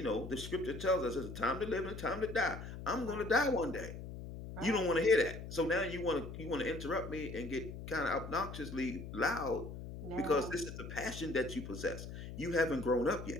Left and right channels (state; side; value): noise; left; hum, 9 dB below the sound